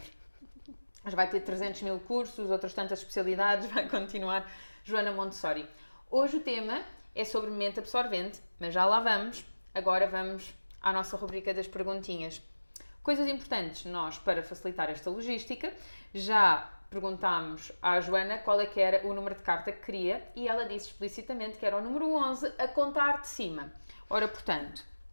Mas vai ter 300 mil cursos, outras tantas especialidades, vai continuar Joana Montessori. Hoje o tema é sobre mente absorvente, mas já lá vamos. Agora vamos à nossa rubrica das perguntinhas. Coisas importantes, nós, para facilitar esta logística, já perguntámos à Joana qual é que era o número de carta que queria e ela disse explicitamente que era o número 11 a contar de cima. Ora, portanto,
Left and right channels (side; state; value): both; inverted; correlation -1.00